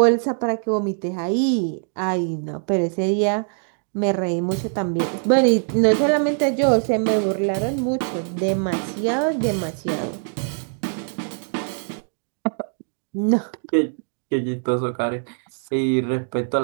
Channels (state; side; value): silent; left; 64 dB below the other